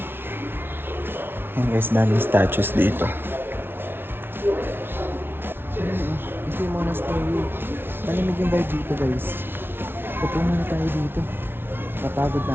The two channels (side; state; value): left; late; 0.11 ms